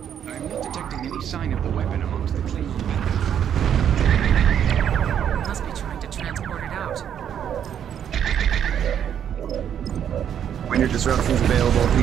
I'm not detecting any sign of the weapon amongst the Klingon battle. Must be trying to transport it out. When your disruption's available, if you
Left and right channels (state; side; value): quieter; left; 9.1 dB